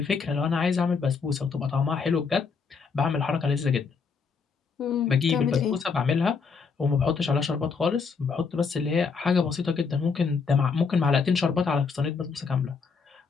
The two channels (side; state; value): right; quieter; 5.3 dB